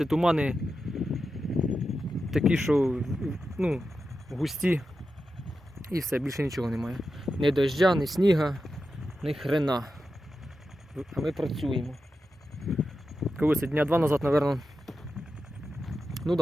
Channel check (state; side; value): normal; both; correlation 0.90